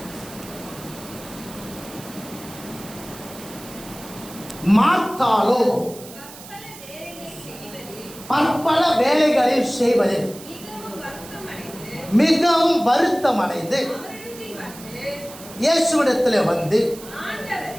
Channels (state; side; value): noise; right; hiss, 16 dB below the sound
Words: மார்த்தாளோ பற்பல வேலைகளில் செய்வதில் மிகவும் வருத்தமடைந்து இயேசுவிடத்தில் வந்து,